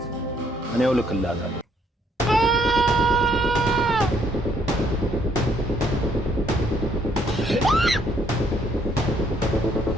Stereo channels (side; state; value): both; normal; correlation 0.68